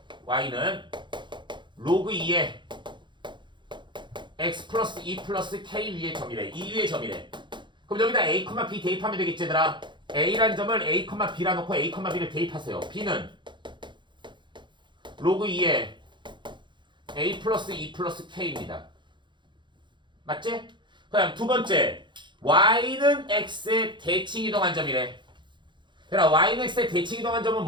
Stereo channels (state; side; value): late; left; 0.23 ms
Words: 로그 2의 X 플러스 2 플러스 K 위의 점이래. 2 위의 점이래. 그럼 여기다 A, B 대입하면 되겠지 얘들아. A란 점을 A, B라 놓고 A, B를 대입하세요. B는 로그 2의 A 플러스 2 플러스 K입니다. 맞지? 그 다음 두 번째 Y는 X의 대칭 이동한 점이래. 얘들아 Y는 X의 대칭 이동한 점은